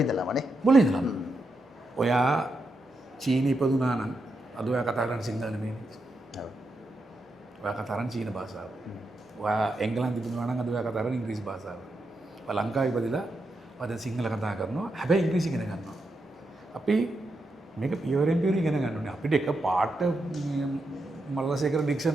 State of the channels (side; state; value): both; normal; correlation 0.85